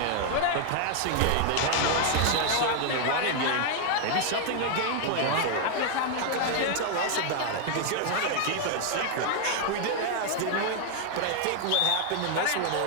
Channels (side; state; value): both; different; correlation 0.00